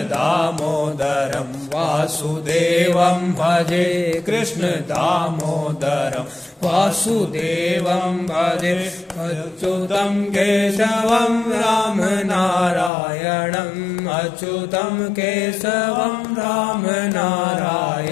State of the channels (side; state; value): right; drops out; at 12.9 s